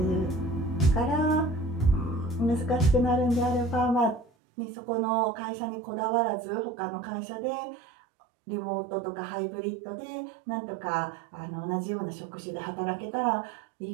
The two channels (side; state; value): left; drops out; at 4.2 s